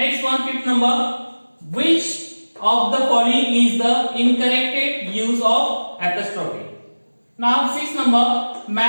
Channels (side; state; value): both; inverted; correlation -1.00